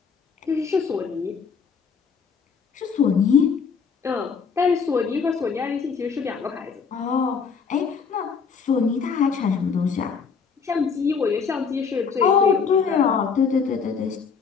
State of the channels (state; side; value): quieter; right; 5.8 dB